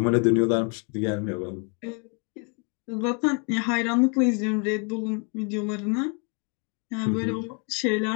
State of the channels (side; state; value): right; quieter; 36.4 dB